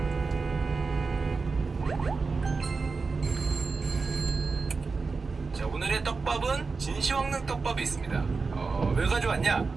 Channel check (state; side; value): quieter; left; 4.4 dB